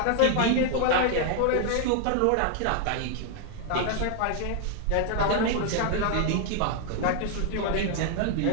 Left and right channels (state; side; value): different; both; correlation 0.00